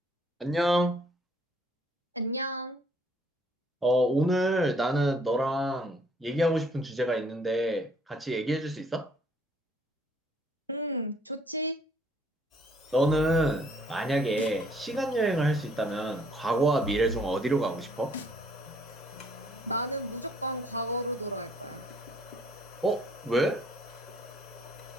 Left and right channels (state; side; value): normal; both; correlation 0.63